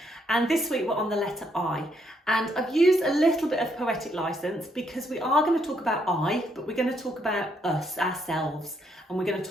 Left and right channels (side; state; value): both; normal; correlation 0.74